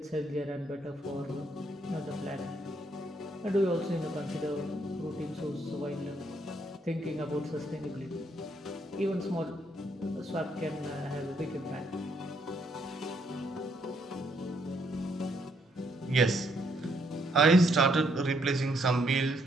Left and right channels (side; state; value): both; normal; correlation 0.72